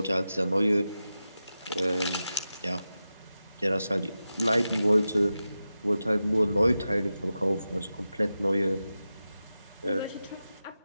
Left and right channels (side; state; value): both; inverted; correlation -0.92